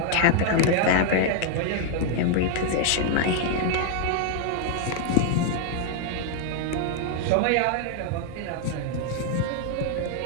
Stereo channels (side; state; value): both; different; correlation 0.00